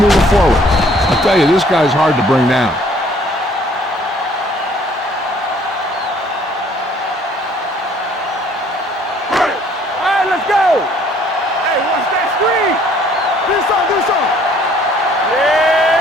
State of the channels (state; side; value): normal; both; correlation 0.59